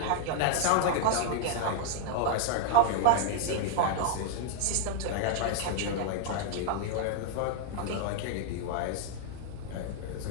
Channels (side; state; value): both; different; correlation 0.00